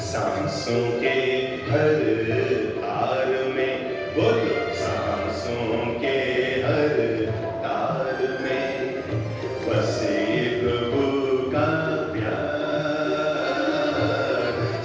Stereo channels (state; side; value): identical; both; correlation 1.00